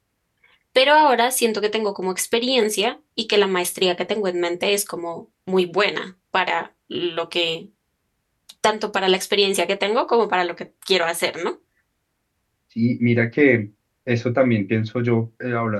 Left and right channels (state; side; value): identical; both; correlation 1.00